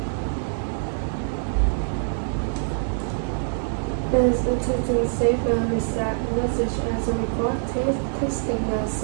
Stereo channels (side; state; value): left; silent; digital silence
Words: Is texting save and reset message as a record. Texting a